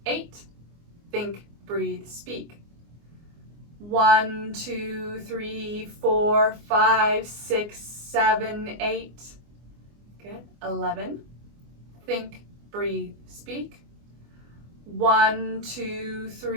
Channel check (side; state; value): left; late; 24 ms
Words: 8. Think, breathe, speak. 1, 2, 3, 4, 5, 6, 7, 8. Good. 11. Think, breathe, speak. 1, 2,